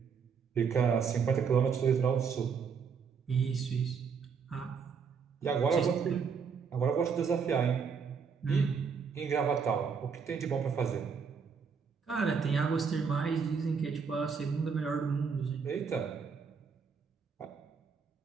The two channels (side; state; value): left; quieter; 6.0 dB